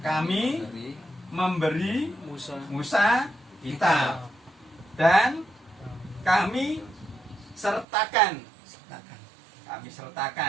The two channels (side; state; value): left; drops out; at 7.9 s